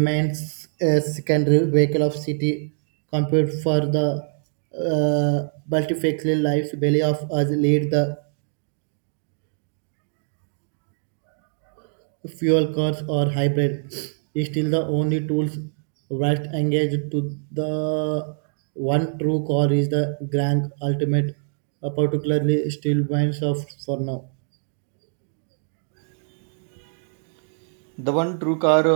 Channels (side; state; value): left; silent; 63 dB below the other